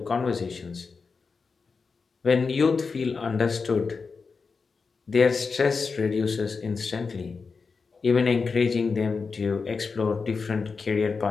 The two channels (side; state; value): right; quieter; 4.8 dB